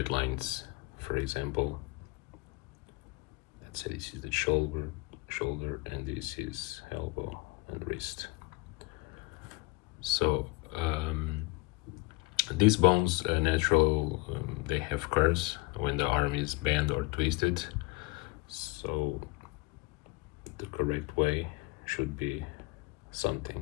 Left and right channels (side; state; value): right; quieter; 23.8 dB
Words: lines. For example, let's say this is the shoulder, and this is elbow and wrist. So these bones they have curves when the arm is bent or twisted. So the correct way should be something